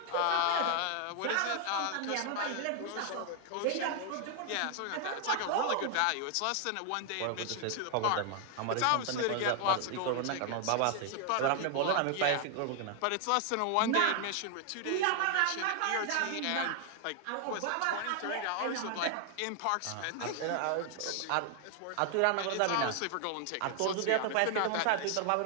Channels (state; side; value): different; both; correlation 0.00